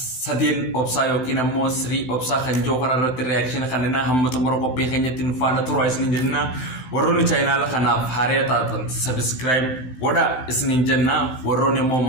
Sadeen Obsaa yookiin ammoo Sirii Obsaa kan jiru kanarratti reakshiina kanneen hamma xumura qophii keenyatti nu faana turaa isiniin jenna. Warroonni chaayinaala kanaaf haaraa taatan subscribe godha isiniin jenna. Warroonni ammoo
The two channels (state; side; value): late; right; 16 ms